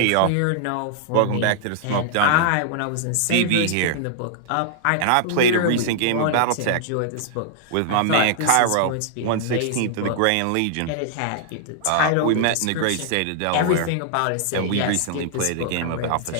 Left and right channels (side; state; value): both; different; correlation -0.01